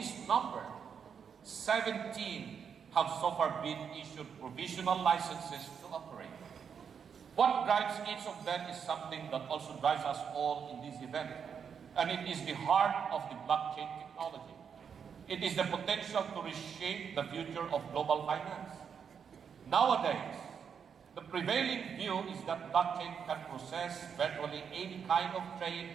number, 17 have so far been issued provisional licenses to operate. What drives each of them is something that also drives us all in this event, and it is the heart of the blockchain technology. It is the potential to reshape the future of global finance. Nowadays, the prevailing view is that blockchain can process virtually any kind of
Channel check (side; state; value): left; quieter; 7.0 dB